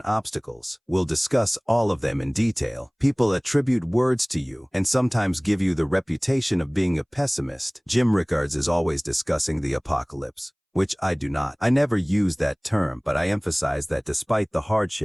obstacles. We'll discuss all of them in detail. People attribute words to you and sometimes give you the reputation of being a pessimist. Jim Rickards is always discussing the apocalypse, which I do not. I never use that term, but I emphasize that despite the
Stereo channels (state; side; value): identical; both; correlation 1.00